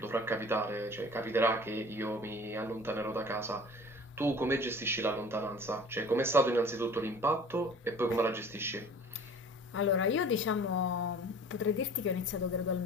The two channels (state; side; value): normal; both; correlation 0.45